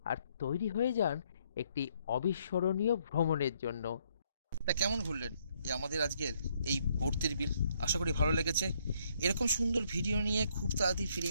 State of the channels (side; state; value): both; inverted; correlation -0.70